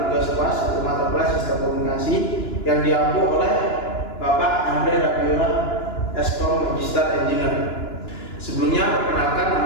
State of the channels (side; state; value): right; late; 2.9 ms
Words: kelas atau mata kelas sistem komunikasi yang diampu oleh Bapak Andre Rabiola, Eskom Magister Engineer. Sebelumnya perkenalkan,